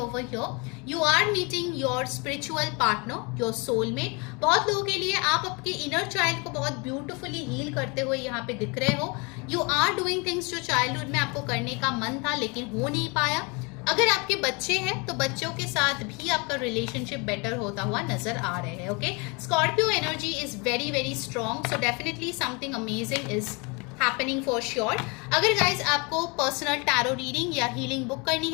over here. You are meeting your spiritual partner, your soulmate. बहुत लोगों के लिए आप आपके inner child को बहुत beautifully heal करते हुए यहाँ पे दिख रहे हो. You are doing things जो childhood में आपको करने का मन था लेकिन हो नहीं पाया. अगर आपके बच्चे हैं तो बच्चों के साथ भी आपका रिलेशनशिप बेटर होता हुआ नजर आ रहे हैं. Okay, Scorpio energy is very strong. So definitely something amazing is happening for sure. अगर गाइज आपको पर्सनल टैरो रीडिंग या हीलिंग बुक करनी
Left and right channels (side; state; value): right; quieter; 30.0 dB